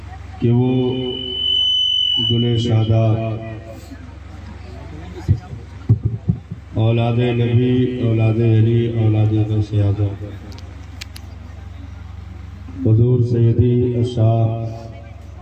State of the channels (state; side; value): identical; both; correlation 1.00